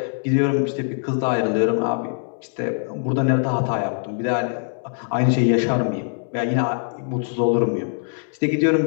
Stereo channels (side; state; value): right; silent; 64 dB below the other